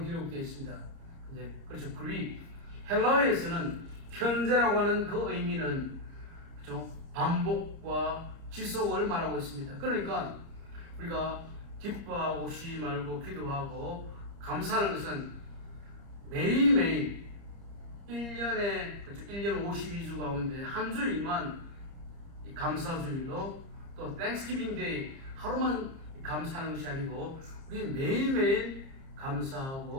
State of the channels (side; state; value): left; late; 30 ms